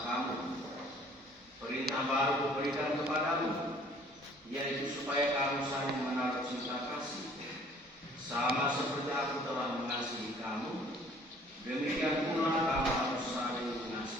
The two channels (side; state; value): both; normal; correlation 0.55